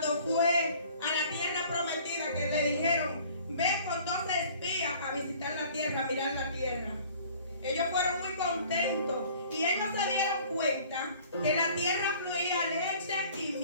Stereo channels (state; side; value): inverted; both; correlation -0.51